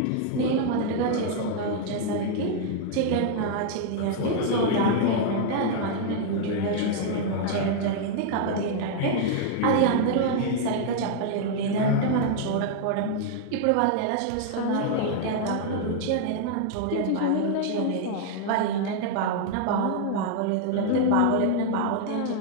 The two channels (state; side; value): different; both; correlation -0.01